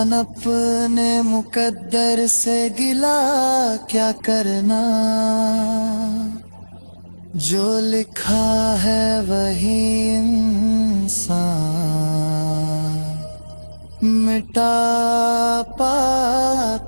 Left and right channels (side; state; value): both; inverted; correlation -1.00